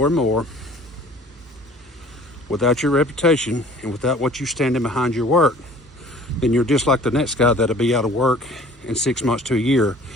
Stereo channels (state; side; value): normal; both; correlation 0.49